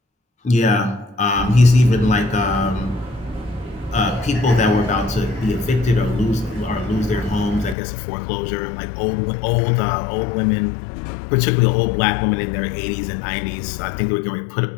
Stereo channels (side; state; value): right; drops out; at 7.8 s